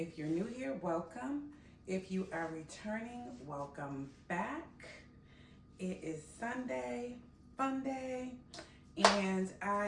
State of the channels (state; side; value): identical; both; correlation 1.00